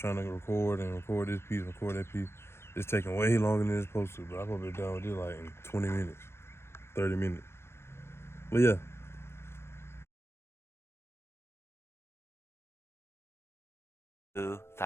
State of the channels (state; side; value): late; right; 0.12 ms